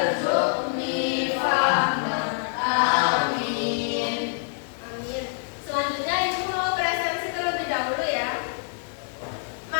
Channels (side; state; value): right; silent; 61 dB below the other